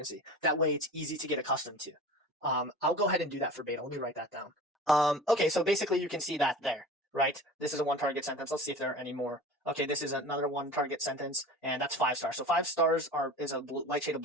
That way it's easy to get accustomed to. I'll go ahead and do that for beta. Let me write that down. Okay, so basically you can see that there, right? This is a one target sentence. Let's see if there are any more. Okay, this is another one target sentence, and that's 5 stars. So 5 stars is a light shade of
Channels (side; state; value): both; normal; correlation 0.37